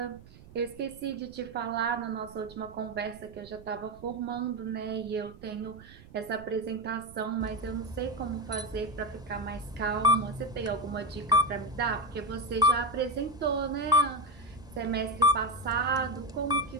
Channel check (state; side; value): noise; right; rumble, 20 dB below the sound